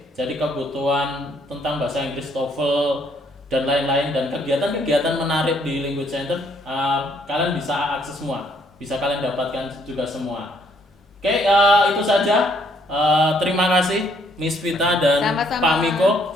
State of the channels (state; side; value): normal; both; correlation 0.67